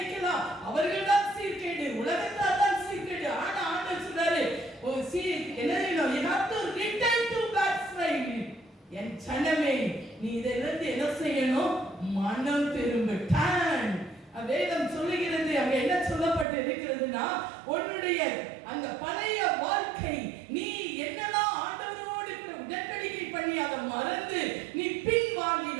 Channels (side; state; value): left; drops out; at 16.4 s